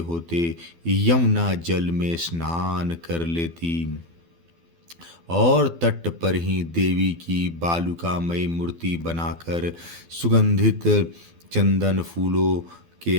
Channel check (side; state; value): left; late; 12 ms